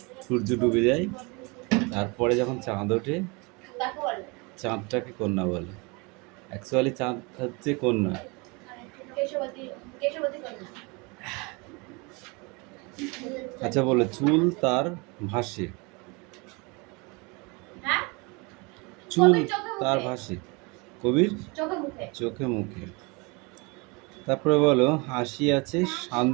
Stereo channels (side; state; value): left; quieter; 28.5 dB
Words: সূর্য ডুবে যায়, তারপরে যখন চাঁদ ওঠে, চাঁদটাকে কন্যা বলে। অ্যাকচুয়ালি চাঁদ হচ্ছে কন্যা। আচ্ছা বলো, চুল তার ভাসে, চুল তার ভাসে কবির চোখে মুখে। তারপরে বলো, হাসি আছে